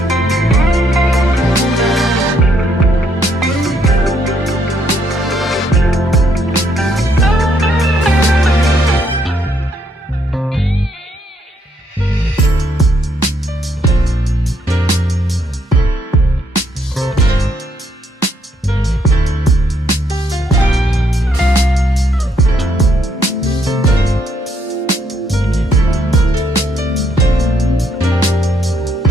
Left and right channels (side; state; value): both; normal; correlation 0.72